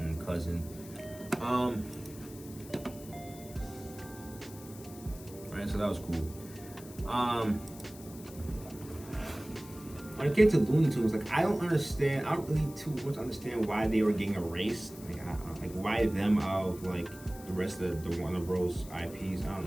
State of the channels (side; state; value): left; noise; hiss, 18 dB below the sound